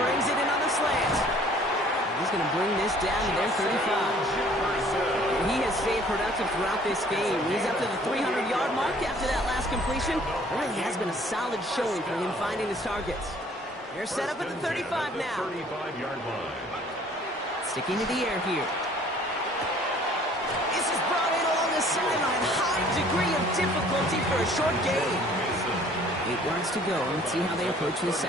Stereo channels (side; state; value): both; normal; correlation 0.55